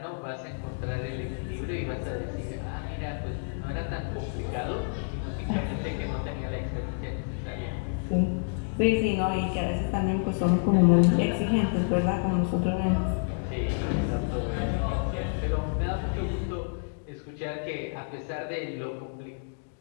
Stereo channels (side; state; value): right; silent; digital silence